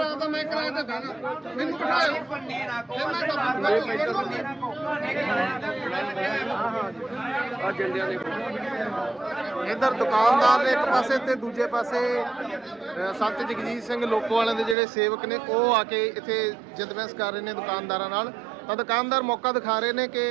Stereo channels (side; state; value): left; drops out; at 14.8 s